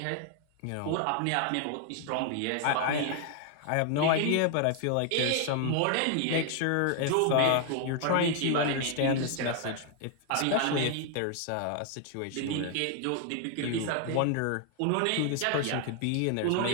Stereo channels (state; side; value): different; both; correlation 0.00